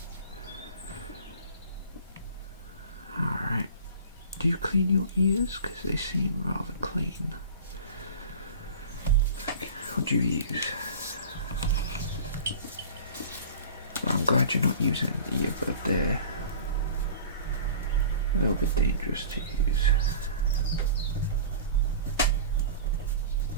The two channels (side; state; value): both; inverted; correlation -0.39